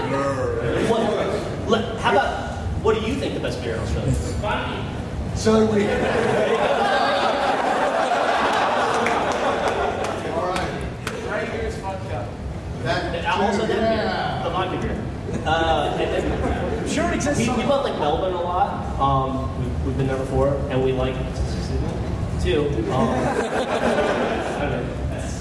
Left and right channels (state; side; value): identical; both; correlation 1.00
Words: How about, what do you think the best beer in Australia is? Funny. So do we. All right. Right here is vodka. Also that beer, the vodka beer. And then, I'm sure it exists we somewhere. went like Melbourne a lot. We've been there before, and we like too. I don't know.